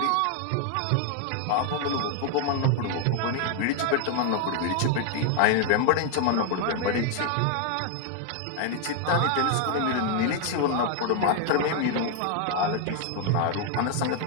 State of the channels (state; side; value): different; both; correlation 0.00